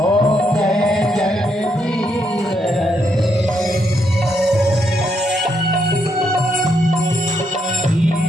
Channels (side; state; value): both; normal; correlation 0.77